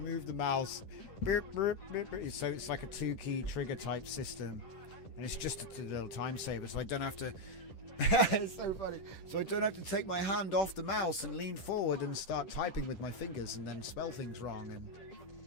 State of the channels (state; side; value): late; right; 10 ms